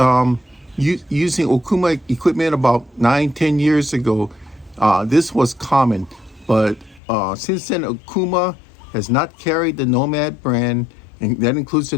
using Okuma equipment about 9, 10 years ago, this was common. But since then, Okuma has not carried the Nomad brand, and that includes the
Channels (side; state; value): right; drops out; at 7.0 s